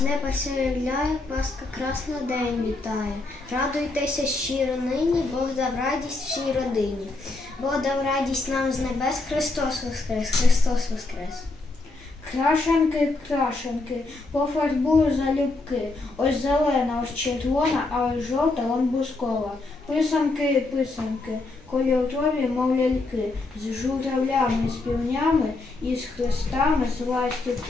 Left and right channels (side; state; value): right; quieter; 3.3 dB